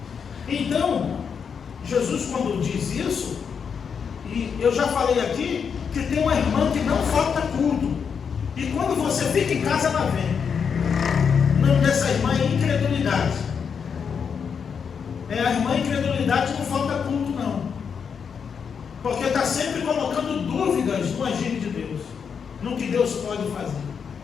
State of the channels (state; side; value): quieter; right; 6.6 dB